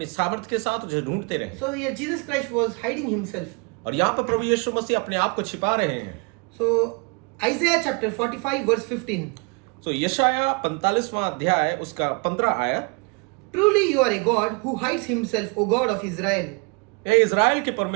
सामर्थ्य के साथ उसे ढूंढते रहे। So here Jesus Christ was hiding himself. और यहाँ पर प्रभु यीशु मसीह अपने आप को छिपा रहे हैं। So Isaiah chapter 45 verse 15. तो यशाया 45वां अध्याय उसका 15 आयत। Truly you are a God who hides himself, O God of Israel. हे इज़राइल के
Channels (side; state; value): left; quieter; 32.4 dB